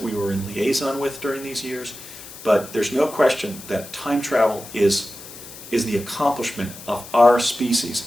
we were in liaison with during these years, but there's no question that time travel is the accomplishment of our species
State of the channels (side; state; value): left; noise; hiss, 15 dB below the sound